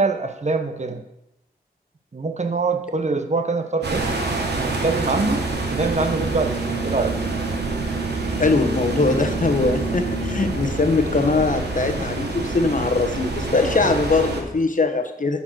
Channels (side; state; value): both; normal; correlation 0.50